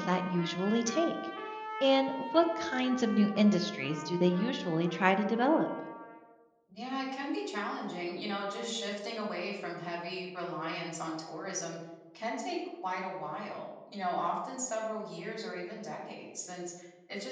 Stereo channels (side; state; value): both; identical; correlation 1.00